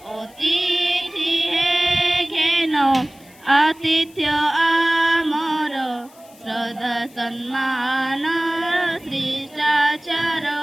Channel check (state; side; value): noise; left; hiss, 26 dB below the sound